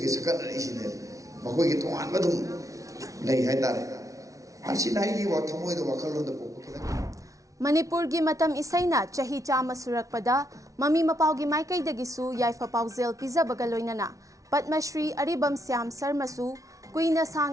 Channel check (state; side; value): late; left; 0.16 ms